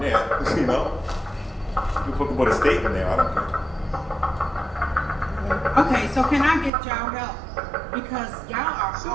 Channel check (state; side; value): drops out; left; at 6.7 s